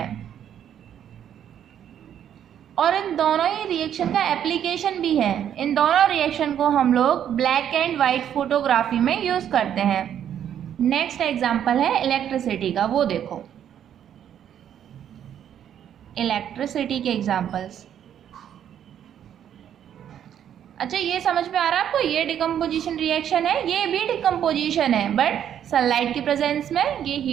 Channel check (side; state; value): left; quieter; 9.7 dB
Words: और इन दोनों ही रिएक्शन का एप्लीकेशन भी है। इन दोनों रिएक्शन को हम लोग ब्लैक एंड वाइट फोटोग्राफी में यूज करते हैं। नेक्स्ट एग्जांपल है इलेक्ट्रिसिटी का, वो देखो इलेक्ट्रिसिटी के एग्जांपल्स। अच्छा, ये समझ में आ रहा है आपको, ये डिकम्पोजिशन रिएक्शन है, ये भी डिकम्पोजिशन है, बट सनलाइट की प्रेजेंस में, ये